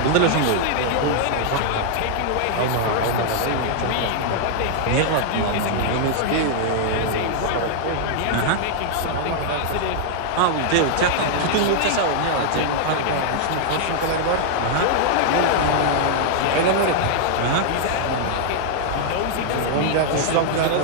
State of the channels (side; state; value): both; different; correlation -0.01